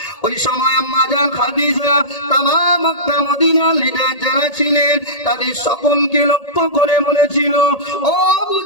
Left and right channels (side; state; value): right; late; 1.8 ms